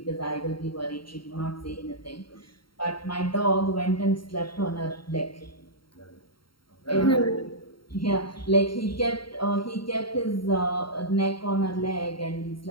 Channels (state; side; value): late; right; 0.73 ms